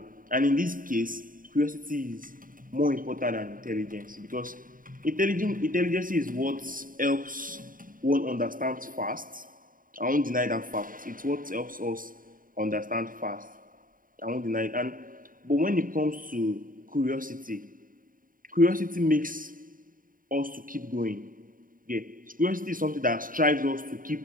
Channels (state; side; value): late; left; 0.40 ms